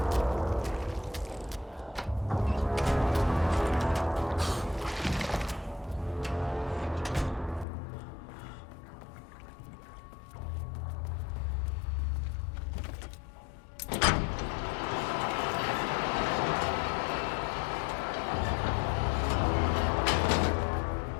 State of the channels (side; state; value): right; drops out; at 7.7 s